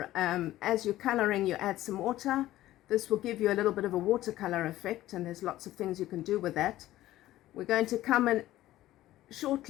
as you're coloring you add some water. This will give you a little bit of a watercolor effect, and there's lots of things you can do with that. We're going to come in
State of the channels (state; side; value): quieter; right; 15.0 dB